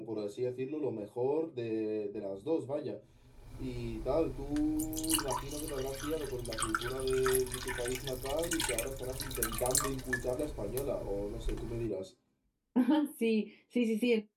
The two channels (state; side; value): identical; both; correlation 1.00